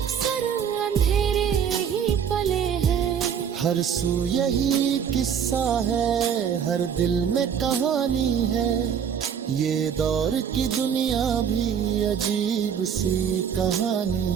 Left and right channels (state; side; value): quieter; left; 7.8 dB